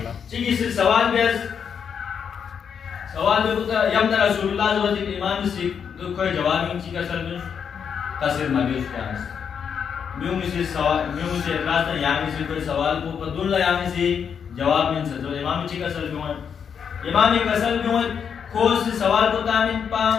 चीज़ से सवाल बेस सवाल में होता यम ना रसूलुल्लाह जो इमाम से तो कोई जवाब नहीं चीज़ का सर में तस्वीर मौजूद क्या है म्यूं से सवाल म्यूं से रास्ता यामी से कोई सवाल को पदुल्ला यामी से जवाब नहीं सकते तो इमाम चीज़ का सर में इमाम एक असल में खोज से सवाल को तामिन पा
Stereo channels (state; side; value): quieter; right; 7.2 dB